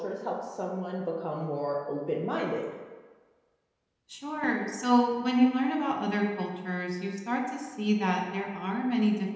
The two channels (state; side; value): identical; both; correlation 1.00